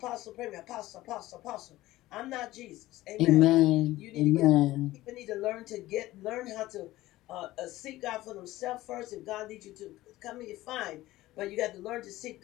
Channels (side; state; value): right; quieter; 16.9 dB